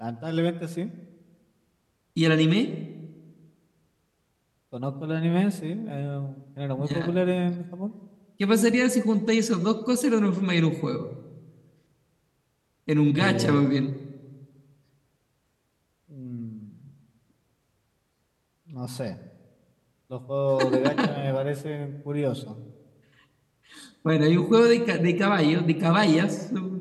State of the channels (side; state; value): both; identical; correlation 1.00